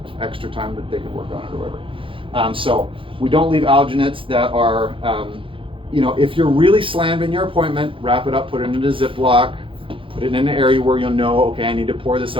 extra time that they could work on it or whatever. So we don't leave alginates that are, you know, if you're really slammed in your appointment, wrap it up, put it in a Ziploc, put it in an area where you'll know, okay, I need to pour this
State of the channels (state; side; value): late; left; 0.25 ms